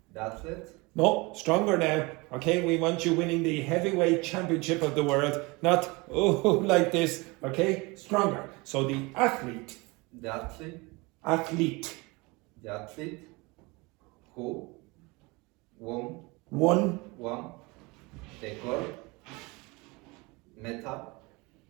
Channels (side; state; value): left; quieter; 25.5 dB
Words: The athlete. No, stronger now. Okay, we want you winning the heavyweight championship of the world, not like this. Okay, stronger. So the athlete. The athlete. Athlete. The athlete who won the gold medal